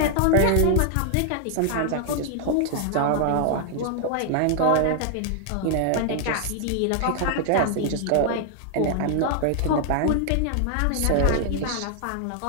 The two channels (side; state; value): both; different; correlation 0.00